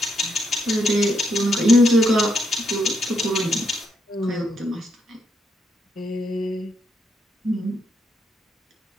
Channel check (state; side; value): normal; both; correlation 0.78